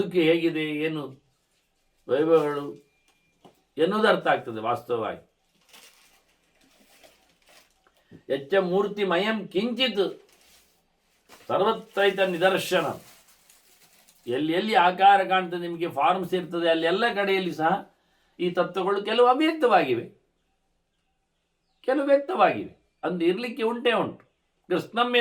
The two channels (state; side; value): identical; both; correlation 1.00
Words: ಹೇಗಿದೆ, ಏನು ವೈಭವಗಳು ಎನ್ನುವುದು ಅರ್ಥ ಆಗ್ತದೆ ವಾಸ್ತವವಾಗಿ. ಯಚ್ಚ ಮೂರ್ತಿಮಯಂ ಕಿಂಚಿತ್ ಸರ್ವತ್ರೈತ ನಿದರ್ಶನ. ಎಲ್ಲಿ ಎಲ್ಲಿ ಆಕಾರ ಕಾಣ್ತದೆ, ನಿಮಗೆ ಫಾರ್ಮ್ಸ್ ಇರ್ತದೆ, ಅಲ್ಲಿ ಎಲ್ಲ ಕಡೆಯಲ್ಲಿ ಸಹ ಈ ತತ್ವಗಳು ಕೆಲವು ಅವ್ಯಕ್ತವಾಗಿವೆ, ಕೆಲವು ವ್ಯಕ್ತವಾಗಿವೆ. ಅಂದು ಇರಲಿಕ್ಕೆ ಉಂಟೇ ಉಂಟು. ಕೃಷ್ಣಂ